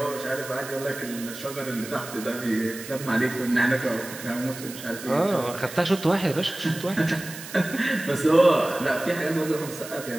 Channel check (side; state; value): right; noise; hiss, 13 dB below the sound